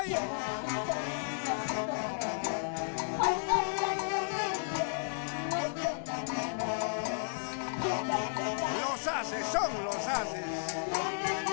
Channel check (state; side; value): silent; right; 56 dB below the other